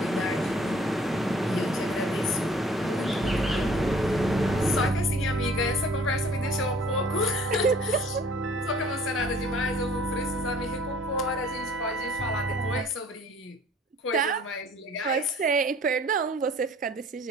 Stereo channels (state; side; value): normal; both; correlation 0.53